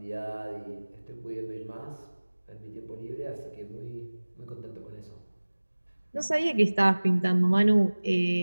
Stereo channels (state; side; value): inverted; both; correlation -1.00